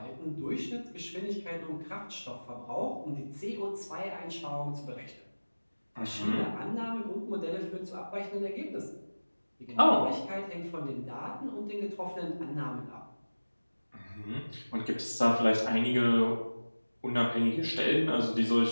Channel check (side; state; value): both; inverted; correlation -1.00